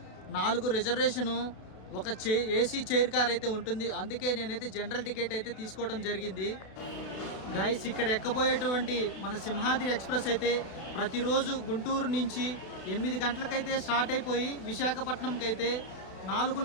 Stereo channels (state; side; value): late; right; 32 ms